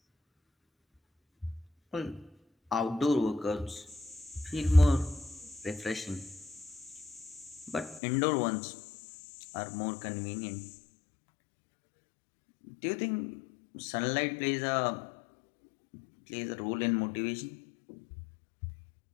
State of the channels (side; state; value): right; drops out; at 8.0 s